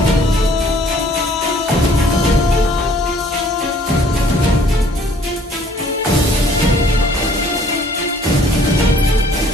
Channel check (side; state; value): both; normal; correlation 0.58